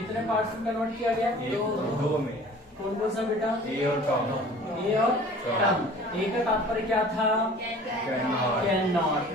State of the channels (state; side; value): normal; both; correlation 0.46